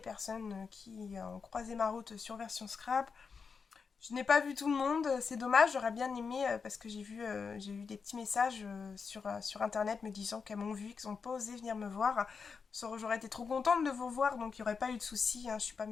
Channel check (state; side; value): quieter; right; 5.5 dB